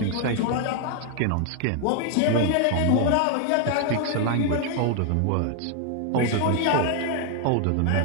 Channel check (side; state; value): both; different; correlation 0.00